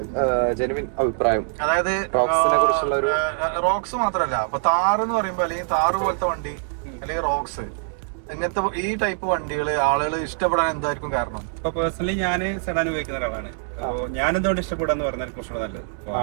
ജെനുവിൻ അഭിപ്രായം? അതായത് റോക്സ് മാത്രല്ല, അപ്പൊ താർ എന്ന് പറയുമ്പോ അല്ലെങ്കിൽ താറ് പോലത്തെ വണ്ടി അല്ലെങ്കിൽ റോക്സ് ഇങ്ങനത്തെ ഈ ടൈപ്പ് വണ്ടികള് ആളുകൾ ഇഷ്ടപ്പെടാൻ എന്തായിരിക്കും കാരണം? ഇപ്പൊ പേഴ്സണലി ഞാൻ സെഡാൻ ഉപയോഗിക്കുന്ന ഒരാളാണ്. അപ്പോൾ ഞാൻ എന്തുകൊണ്ട് ഇഷ്ടപ്പെടാന്ന് പറഞ്ഞാൽ കുറച്ചുകൂടെ നല്ലത്.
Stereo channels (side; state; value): left; silent; digital silence